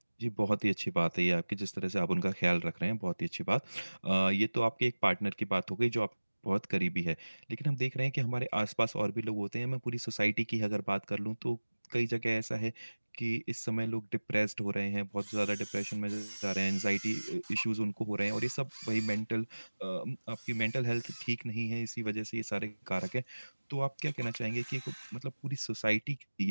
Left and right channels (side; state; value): both; inverted; correlation -1.00